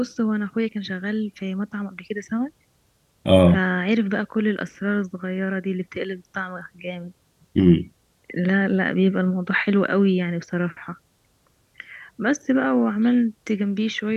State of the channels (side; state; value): both; identical; correlation 1.00